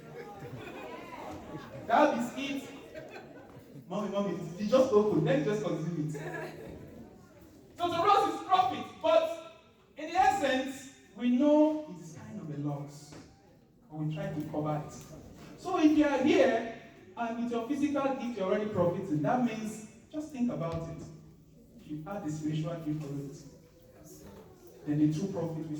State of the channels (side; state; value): both; identical; correlation 1.00